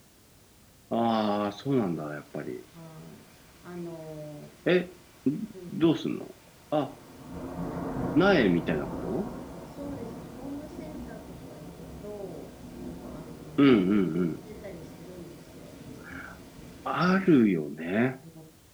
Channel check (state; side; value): identical; both; correlation 1.00